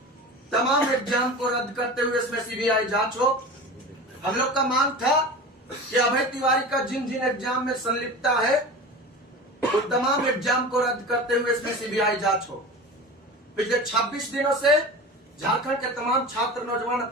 तमाम एग्जाम को रद्द करते हुए इसमें सीबीआई जांच हो। हम लोग का मांग था कि अभय तिवारी का जिन जिन एग्जाम में संलिप्तता है, उन तमाम एग्जाम को रद्द करते हुए इसमें सीबीआई जांच हो। पिछले 26 दिनों से झारखंड के तमाम छात्र नौजवान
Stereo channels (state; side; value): normal; both; correlation 0.32